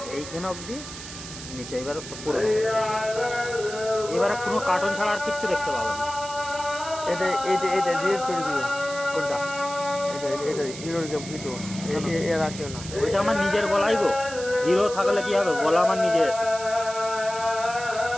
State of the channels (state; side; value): noise; right; hiss, 12 dB below the sound